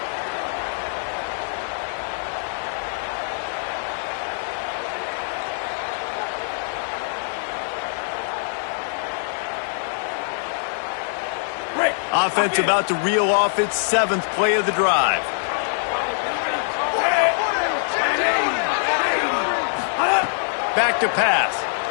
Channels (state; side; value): silent; right; digital silence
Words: Offense about to reel off its 7th play of the drive. Back to pass.